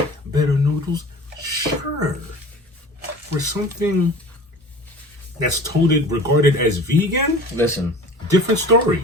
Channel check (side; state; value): both; normal; correlation 0.41